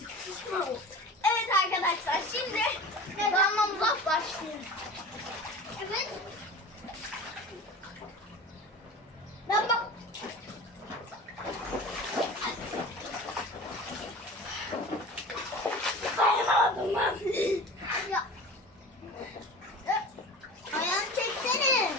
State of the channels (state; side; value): normal; both; correlation 0.36